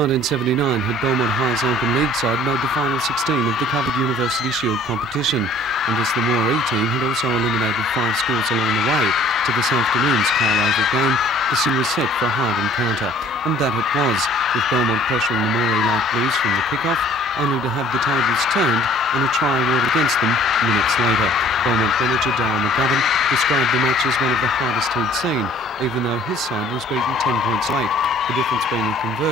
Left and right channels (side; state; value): both; normal; correlation 0.54